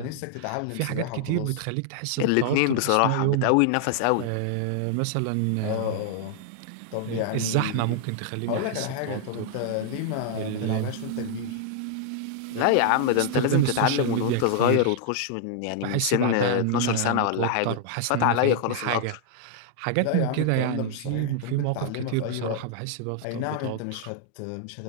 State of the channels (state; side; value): different; both; correlation 0.00